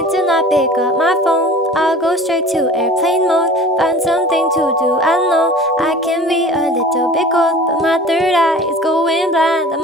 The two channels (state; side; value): normal; both; correlation 0.43